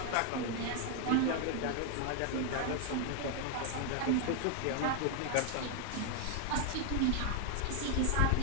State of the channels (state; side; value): different; both; correlation 0.01